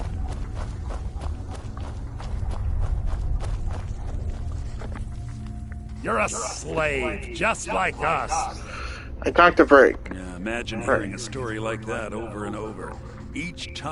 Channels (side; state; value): both; identical; correlation 1.00